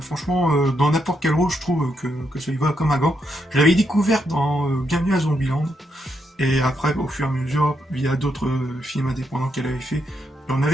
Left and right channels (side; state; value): both; normal; correlation 0.80